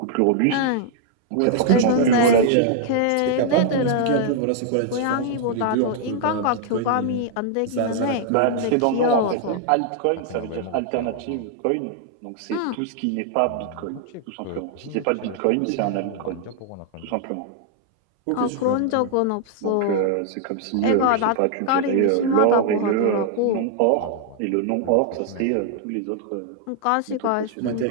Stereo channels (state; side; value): different; both; correlation 0.00